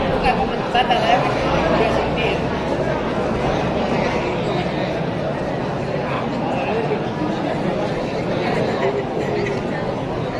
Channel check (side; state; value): both; identical; correlation 1.00